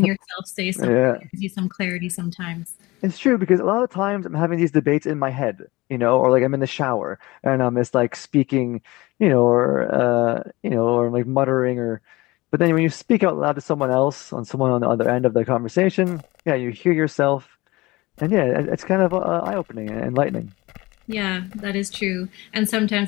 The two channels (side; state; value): right; quieter; 21.2 dB